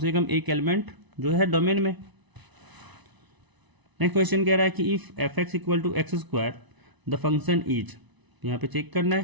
कम एक एलिमेंट जो है डोमेन में। नेक्स्ट क्वेश्चन कह रहा है कि if f x equal to x square the function is, यहाँ पे चेक करना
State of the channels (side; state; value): left; late; 1.0 ms